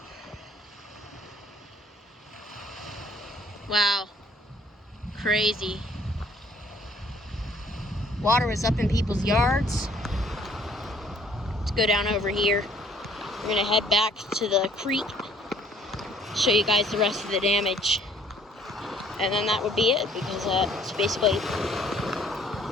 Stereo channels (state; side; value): normal; both; correlation 0.59